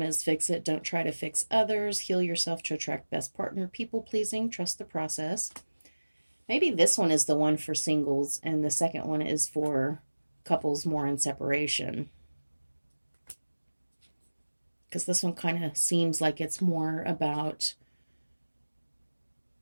Fix It. Don't try to fix others. Heal yourself to attract best partner. People pleasing. Trust the process. Maybe this one is the one for singles and the second one is for couples more in separation. Because this one kind of seems like it's more about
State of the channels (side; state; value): both; inverted; correlation -1.00